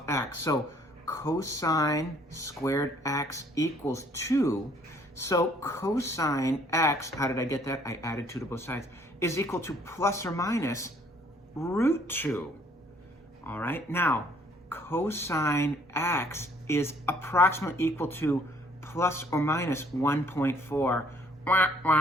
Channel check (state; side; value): normal; both; correlation 0.61